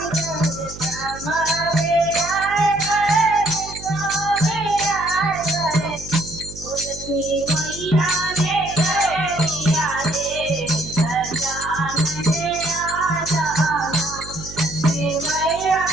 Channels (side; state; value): right; noise; hum, 14 dB below the sound